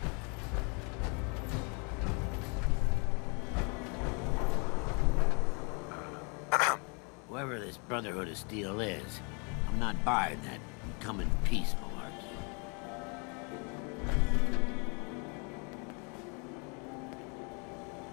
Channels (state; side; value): quieter; right; 34.4 dB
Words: Whoever this Brotherhood of Steel is, I'm not buying that come in peace malarkey.